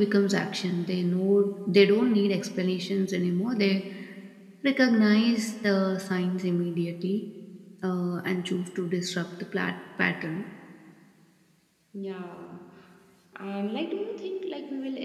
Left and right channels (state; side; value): identical; both; correlation 1.00